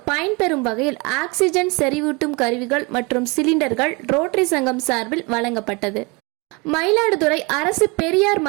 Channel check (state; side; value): quieter; left; 28.3 dB